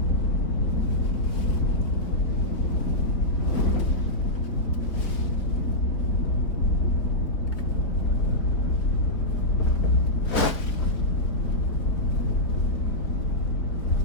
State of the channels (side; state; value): right; late; 3.8 ms